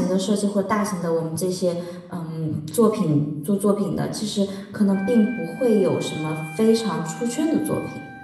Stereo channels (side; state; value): both; identical; correlation 1.00